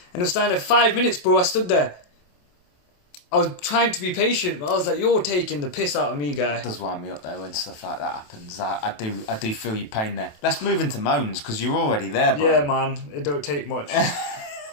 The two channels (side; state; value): right; late; 28 ms